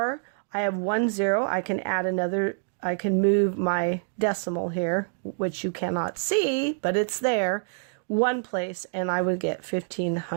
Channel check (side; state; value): left; silent; digital silence